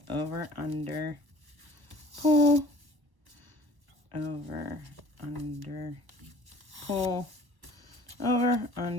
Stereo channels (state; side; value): late; left; 1.1 ms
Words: over, under, pull, over, under, pull, over,